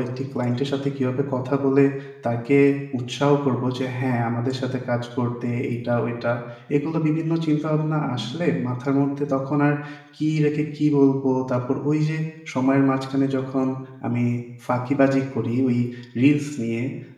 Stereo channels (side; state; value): both; identical; correlation 1.00